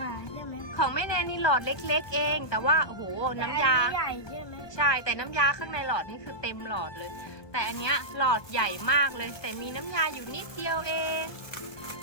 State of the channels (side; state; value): right; late; 1.2 ms